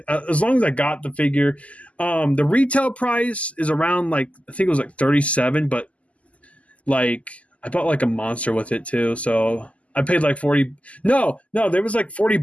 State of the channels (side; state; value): right; late; 0.067 ms